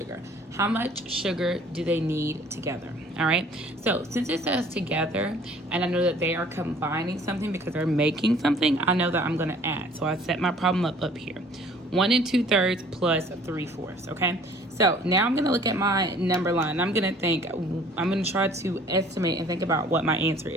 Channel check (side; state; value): both; normal; correlation 0.53